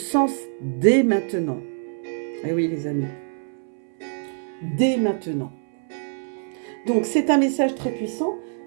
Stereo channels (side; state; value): left; silent; 62 dB below the other